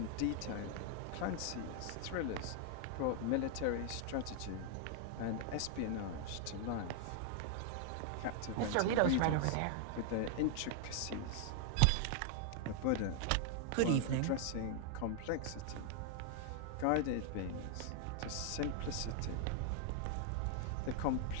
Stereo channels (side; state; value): both; different; correlation 0.00